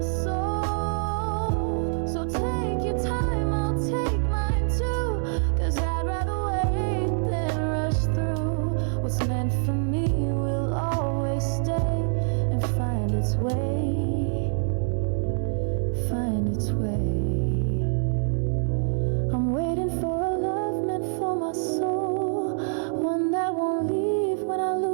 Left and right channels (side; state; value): left; silent; 61 dB below the other